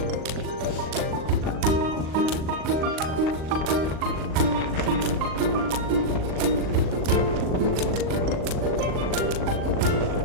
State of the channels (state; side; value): late; left; 39 ms